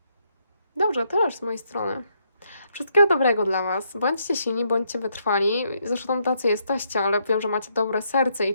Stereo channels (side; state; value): both; inverted; correlation -0.75